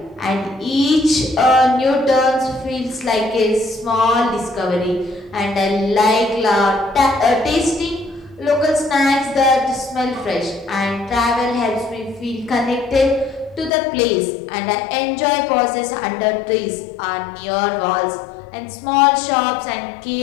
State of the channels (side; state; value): right; drops out; at 13.7 s